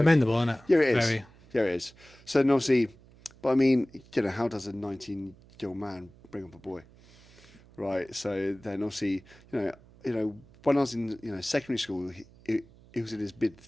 isn't it? Yeah, it is. Yeah, it is. So then obviously, but I mean, how does a 19-year-old man bring up a boy, right? So then obviously, when I was in secondary school, he was in his mid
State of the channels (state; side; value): noise; right; hum, 25 dB below the sound